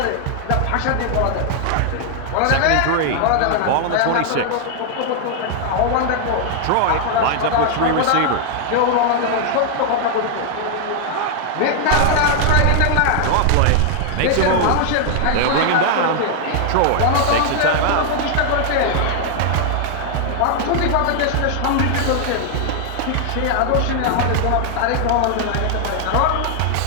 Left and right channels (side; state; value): both; different; correlation 0.00